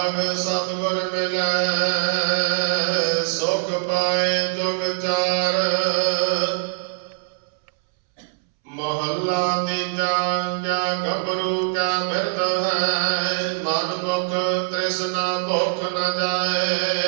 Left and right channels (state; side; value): silent; left; 64 dB below the other